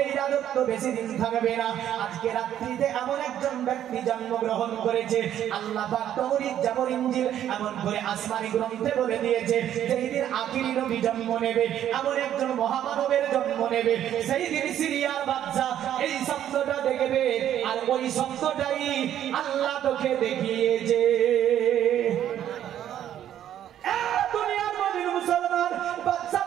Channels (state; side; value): quieter; left; 10.9 dB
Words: এই রাজত্ব বেশি দিন থাকবে না। আজকে রাত্রিতে এমন একজন ব্যক্তি জন্মগ্রহণ করেছে, আল্লাহ পাক তৌরাত, জাবর, ইনজিল এমন করে আসমানি গ্রন্থে বলে দিয়েছে, যেই দিন আখিরি নবী জন্ম নেবে, এমন একজন মহামানবের জন্ম নেবে, সেই দিন সিরিয়ার বাচ্চা এই শব্দটা দেখবে। আর ওই শব্দটাই আল্লাহ তোকে দেখিয়েছে। দুনিয়ার মধ্যে মুসলমান বাচ্চা